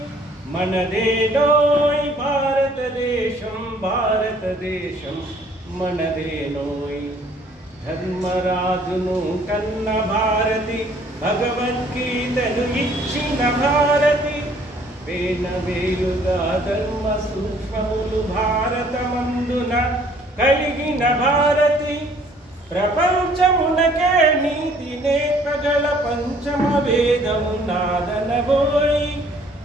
మనదేనోయ్ భారతదేశం భారతదేశం మనదేనోయ్ ధర్మరాజును కన్న భారతి భగవద్గీతను ఇచ్చిన భారతి వేలుగా ధర్మ సూక్ష్మములు భారతమందున కలిగిన భారతి ప్రపంచమునకే నీతి నేర్పగల పంచమ వేదము నాదనవోయ్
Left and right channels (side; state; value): both; normal; correlation 0.59